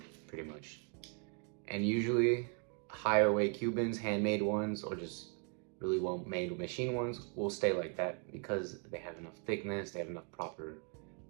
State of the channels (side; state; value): left; quieter; 39.3 dB